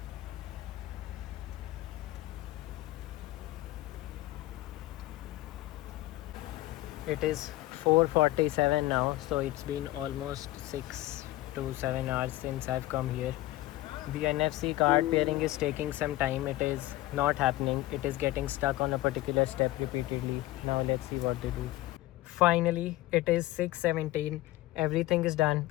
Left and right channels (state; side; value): quieter; right; 16.8 dB